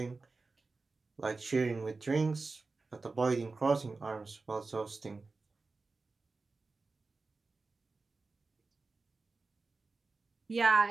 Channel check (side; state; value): left; quieter; 3.8 dB